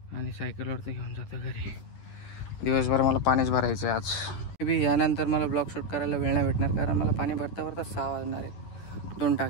आणि सायकलवरती घेऊन जातो घरी. दिवसभर मला पाणीच भरायचं आहे आज. मे बी यानंतर मला ब्लॉग शूट करायला वेळ नाही भेटणार, कारण मला पाणी भरता भरता 6 वाजणार आहेत. 2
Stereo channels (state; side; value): late; right; 10 ms